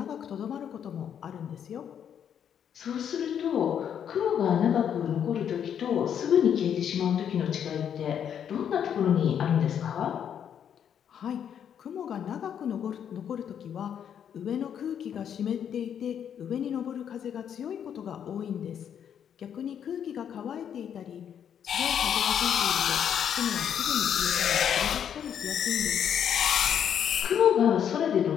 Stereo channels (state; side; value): quieter; right; 8.7 dB